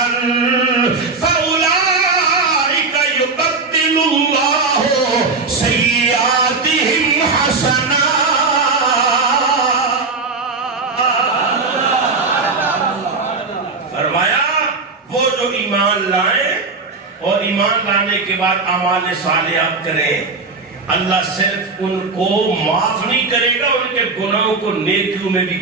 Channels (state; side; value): quieter; left; 4.1 dB